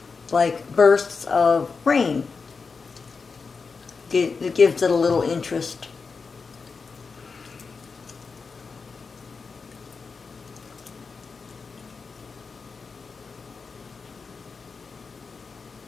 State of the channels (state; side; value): quieter; right; 4.8 dB